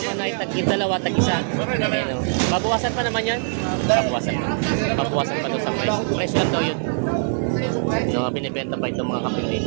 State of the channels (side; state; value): left; silent; digital silence